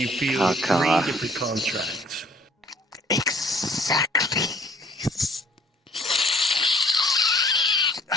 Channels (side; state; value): both; normal; correlation 0.57